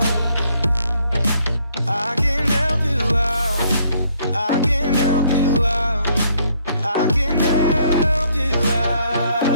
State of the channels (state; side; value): inverted; both; correlation -0.67